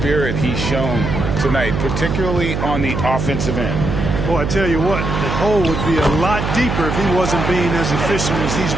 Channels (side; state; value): right; noise; hum, 2 dB below the sound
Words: he's shown tonight, particularly on the offensive end. Boy, I tell you what, the hole would be a lot deeper if he wasn't being as efficient as he's